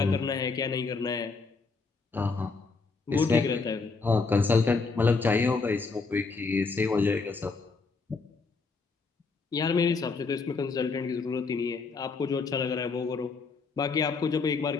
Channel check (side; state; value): right; quieter; 4.4 dB